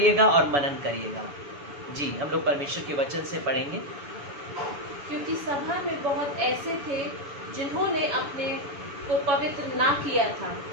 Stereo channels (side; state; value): left; late; 7.0 ms